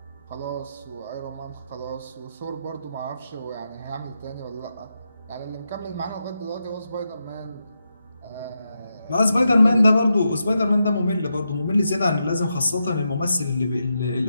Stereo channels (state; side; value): inverted; both; correlation -0.86